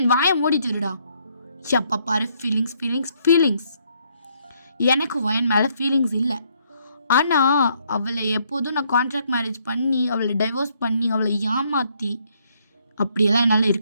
வாயை மூடிட்டுருடா. எப்போ பாரு ஃபீலிங்ஸ். எனக்கு வயன் மேலே ஃபீலிங்ஸ் இல்லை. ஆனால் அவளை எப்போதும் நான் கான்ட்ராக்ட் மேரேஜ் பண்ணி அவளை டைவோர்ஸ் பண்ணி அவளை ஏமாற்றி அப்படியெல்லாம் என்னால்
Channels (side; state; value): both; inverted; correlation -0.71